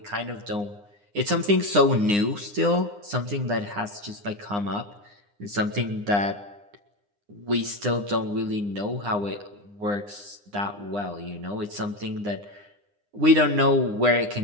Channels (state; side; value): late; left; 9.8 ms